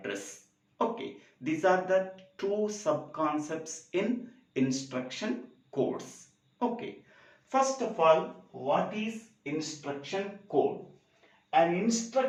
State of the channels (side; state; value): both; identical; correlation 1.00